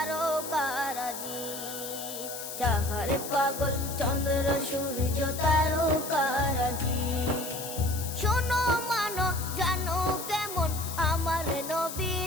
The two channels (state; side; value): noise; left; hiss, 8 dB below the sound